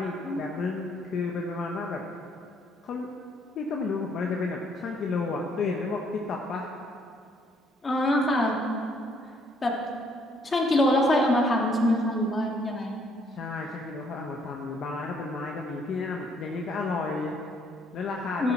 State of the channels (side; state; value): both; normal; correlation 0.67